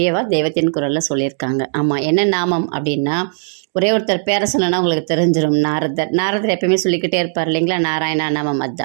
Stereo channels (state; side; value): silent; left; digital silence